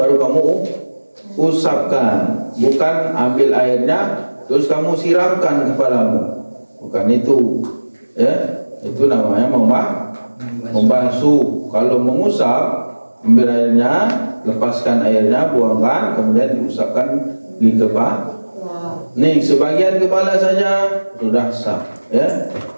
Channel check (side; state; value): both; inverted; correlation -1.00